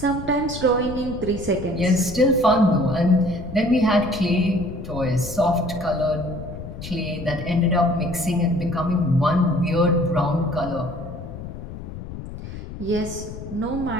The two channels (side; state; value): left; noise; rumble, 11 dB below the sound